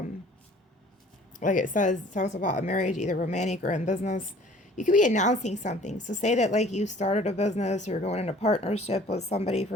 like it says, it talks about a marriage, either romantic or in business. You could be announcing something. So say that like you started a business or you're going into partnership with somebody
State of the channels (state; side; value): normal; both; correlation 0.52